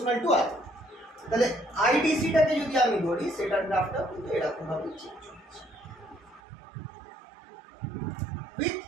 টু আর। তাহলে আইডিসিটাকে যদি আমি ধরি সেটার গ্রাফটা কিন্তু এরকম ভাবে চেঞ্জ হচ্ছে উইথ।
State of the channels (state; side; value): drops out; left; at 6.4 s